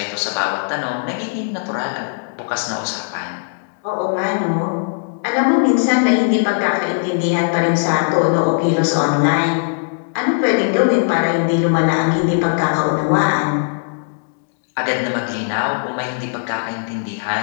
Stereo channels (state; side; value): silent; right; digital silence